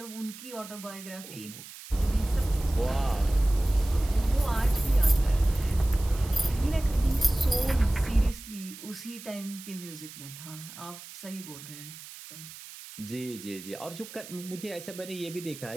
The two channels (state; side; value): noise; right; hiss, 15 dB below the sound